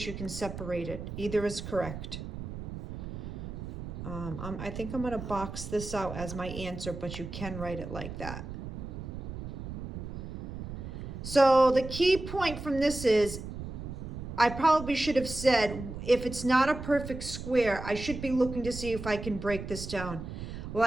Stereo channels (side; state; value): right; noise; rumble, 8 dB below the sound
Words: You can separate it. Either is correct. I think I'm going to box this out as my answer, but you can write it like that. So the key point from this is, I probably should have said, if it's not a perfect square, I should be looking to see if I can break this down. Well,